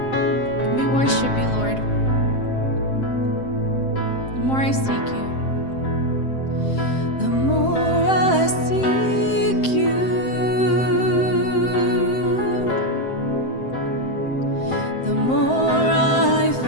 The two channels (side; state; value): right; late; 7.7 ms